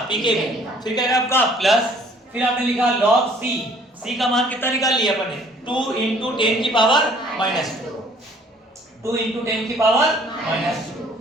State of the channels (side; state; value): both; normal; correlation 0.57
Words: pKb। फिर क्या आएगा आपका प्लस, फिर आपने लिखा log C। C का मान कितना निकाल लिया अपने, 2 × 10 की पावर -2। 2 × 10 की पावर -2।